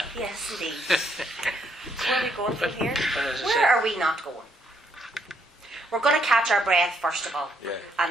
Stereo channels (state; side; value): normal; both; correlation 0.72